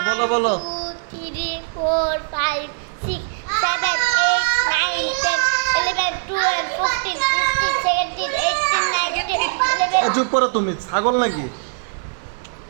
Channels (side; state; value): left; silent; 59 dB below the other